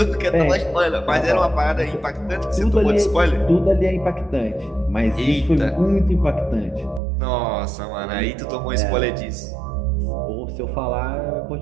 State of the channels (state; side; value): drops out; left; at 7.0 s